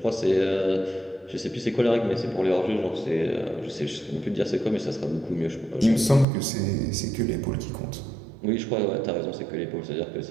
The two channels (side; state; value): left; drops out; at 6.2 s